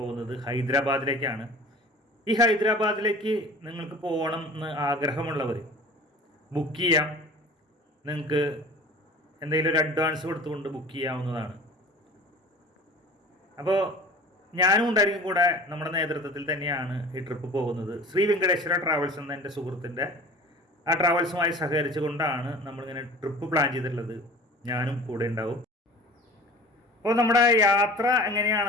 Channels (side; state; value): both; normal; correlation 0.42